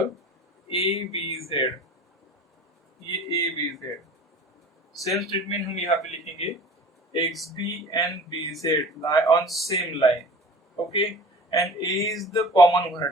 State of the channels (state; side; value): normal; both; correlation 0.41